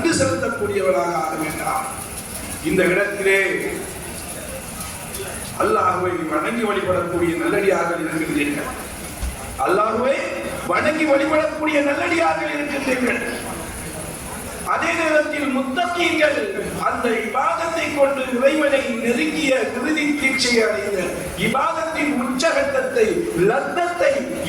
செலுத்தக்கூடியவனாக ஆக வேண்டாம். இந்த இடத்திலே அல்லாஹ்வை வணங்கி வழிபடக்கூடிய நல்லடியார்கள் இருக்கின்றீர்கள். அல்லாஹ்வை வணங்கி வழிபடக்கூடிய நல்லடியார்கள் இருக்கின்றீர்கள். அதே நேரத்தில் முத்தகீன்கள் அந்த இபாதத்தை கொண்டு இறைவனை நெருங்கிய இறுதி தீட்சையை அடைந்த இபாதத்தின் உச்சகட்டத்தை, லத்தத்தை,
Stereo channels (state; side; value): identical; both; correlation 1.00